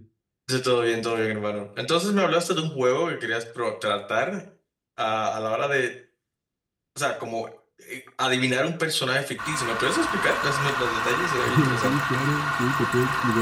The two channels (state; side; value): identical; both; correlation 1.00